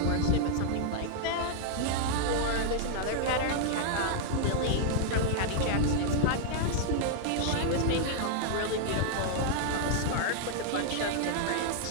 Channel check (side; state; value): both; different; correlation -0.01